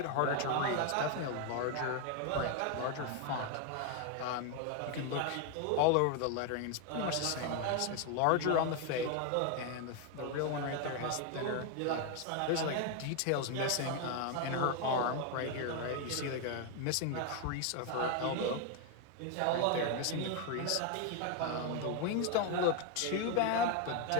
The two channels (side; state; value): both; different; correlation 0.01